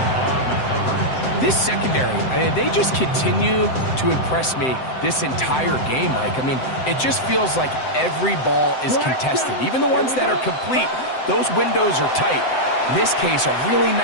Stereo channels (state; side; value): late; right; 7.8 ms